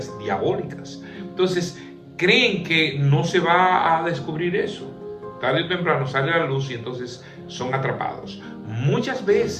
diabólicas. Entonces, creen que no se va a descubrir eso. Tarde o temprano sale a la luz y entonces son atrapados. Muchas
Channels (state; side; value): identical; both; correlation 1.00